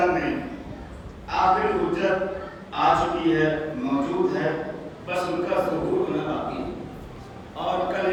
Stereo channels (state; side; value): identical; both; correlation 1.00